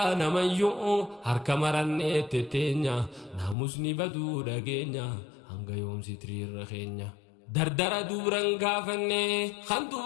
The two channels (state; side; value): drops out; right; at 3.6 s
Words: namayyuu harka marannee tetteenya naamusni baduu dhageenya hanga yoomsi tiriirra keenya dardara duuran gaafanne kan